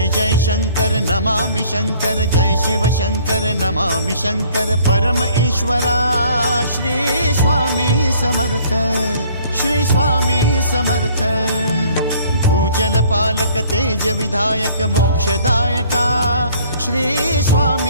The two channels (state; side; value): inverted; both; correlation -0.57